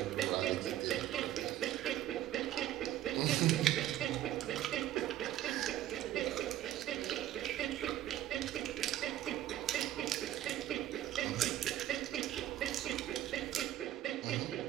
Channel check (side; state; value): left; quieter; 12.8 dB